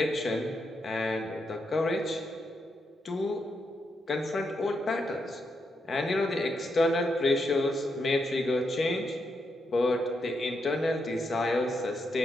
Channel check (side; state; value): both; normal; correlation 0.82